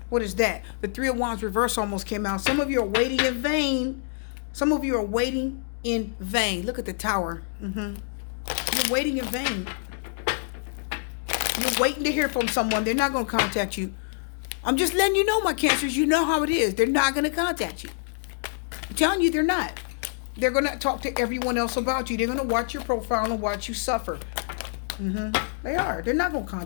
What is that? The 3 of Wands reverse almost came out. Some of you are waiting in vain. Some of you are waiting in vain. Look at the Tower. You're waiting in vain. You're waiting to hear from someone. They're not going to contact you. I'm just letting you know, my Cancers. You know how it is. They're not going to contact you. I'm telling you, they're not. They're going to talk to everyone else about you. They're going to watch your profile and watch you suffer. They are. They're not going to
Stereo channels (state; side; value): silent; right; digital silence